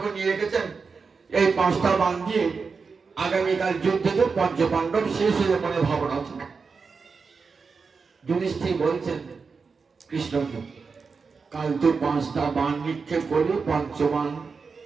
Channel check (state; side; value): quieter; left; 5.0 dB